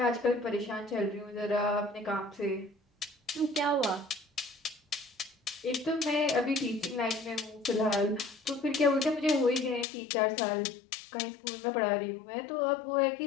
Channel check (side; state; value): right; drops out; at 9.9 s